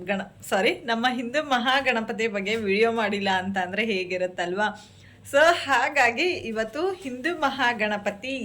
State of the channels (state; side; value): identical; both; correlation 1.00